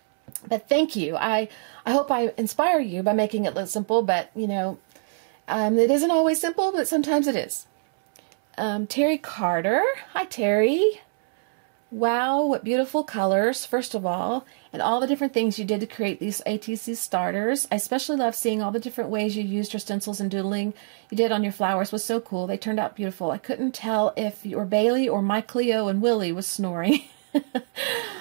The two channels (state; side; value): silent; left; 62 dB below the other